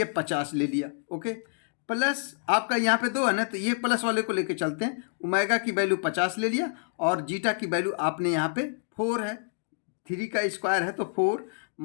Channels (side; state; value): right; silent; digital silence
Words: 50 ले लिया, ओके। प्लस आपका यहाँ पे 2 है ना, तो ये प्लस वाले को लेके चलते हैं। ओमेगा की वैल्यू 50 ले लिया और जीटा की वैल्यू आपने यहाँ पे 4 है, 3 का स्क्वायर है तो 4